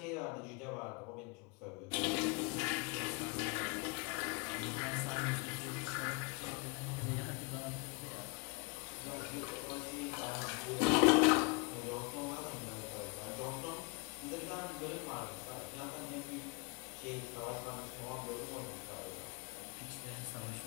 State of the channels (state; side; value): quieter; right; 31.5 dB